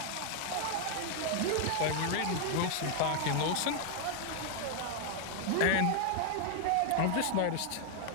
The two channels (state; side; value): different; both; correlation 0.00